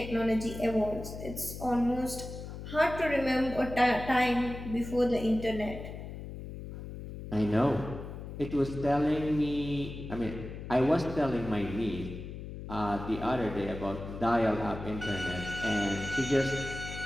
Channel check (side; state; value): left; noise; hum, 10 dB below the sound